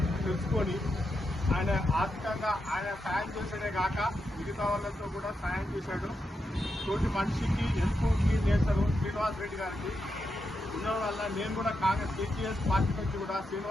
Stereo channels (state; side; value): normal; both; correlation 0.85